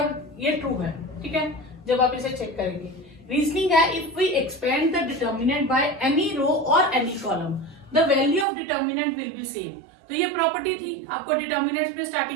ये ट्रू है। ठीक है, जब आप इसे चेक करेंगे। रीजनिंग है, if we expand the determinant by any row और any column the value of determinant will be same. तो ये प्रॉपर्टी थी, आपको डिटर्मिनेंट में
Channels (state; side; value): drops out; left; at 8.5 s